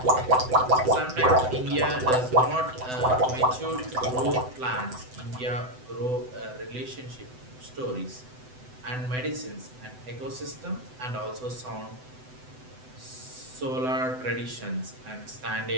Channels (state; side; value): late; left; 7.9 ms